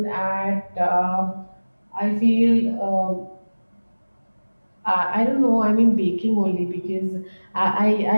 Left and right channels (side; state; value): both; inverted; correlation -1.00